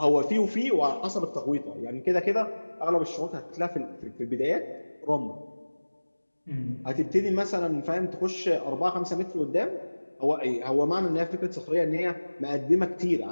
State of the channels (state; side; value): inverted; both; correlation -1.00